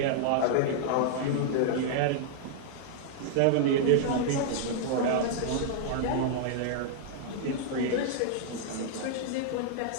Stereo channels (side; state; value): both; different; correlation -0.01